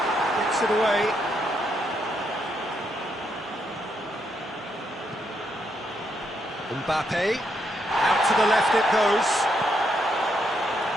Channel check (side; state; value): both; normal; correlation 0.78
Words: gets it away. Mbappe. Out to the left it goes.